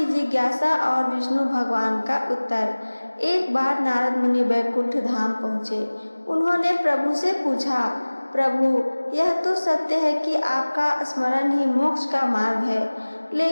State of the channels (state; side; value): inverted; both; correlation -1.00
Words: जिज्ञासा और विष्णु भगवान का उत्तर। एक बार नारद मुनि वैकुंठ धाम पहुँचे। उन्होंने प्रभु से पूछा, प्रभु यह तो सत्य है कि आपका स्मरण ही मोक्ष का मार्ग है,